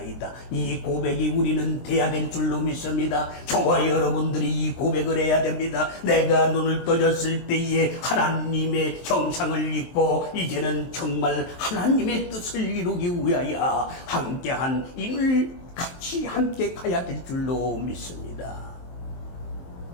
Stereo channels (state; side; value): late; right; 23 ms